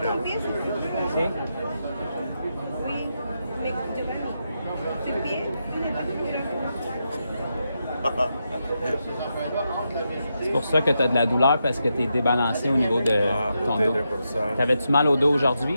Sí. C'est pour ça que tu as de la douleur parce que tu es débalancé au niveau de ton dos. Peut-être pour ça. T'avais-tu mal au dos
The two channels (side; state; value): both; inverted; correlation -0.85